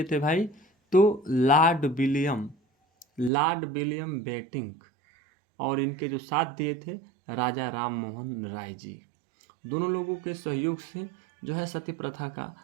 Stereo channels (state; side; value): drops out; left; at 3.3 s